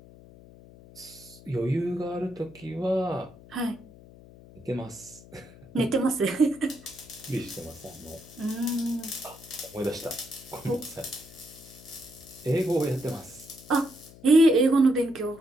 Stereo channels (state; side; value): noise; left; hum, 21 dB below the sound